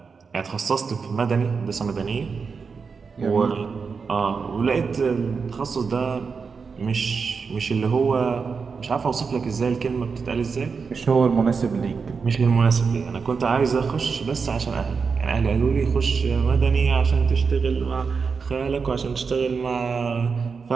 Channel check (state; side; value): quieter; left; 5.3 dB